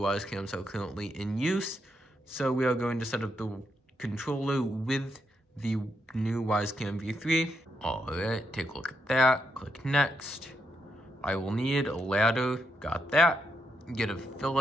are currently in use. So we are going to set up the controller with the new WYZE V3. Alright, take a look at that. Click next. I will need a ladder. Got that. Get a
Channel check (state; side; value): normal; both; correlation 0.80